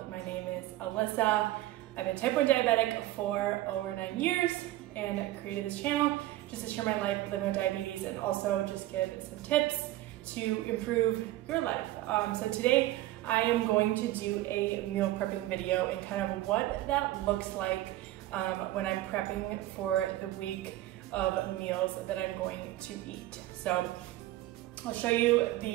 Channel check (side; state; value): left; quieter; 15.9 dB